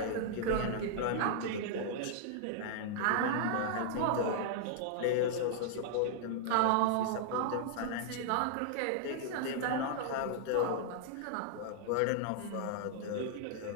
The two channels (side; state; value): both; different; correlation -0.01